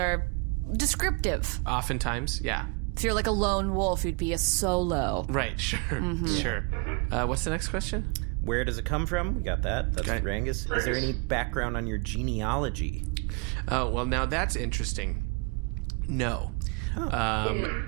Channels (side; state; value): left; quieter; 30.6 dB